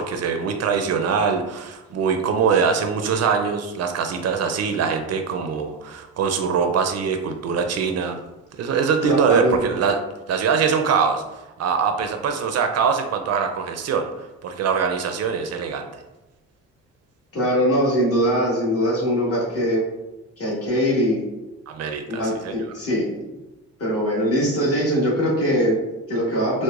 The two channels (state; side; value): quieter; left; 3.2 dB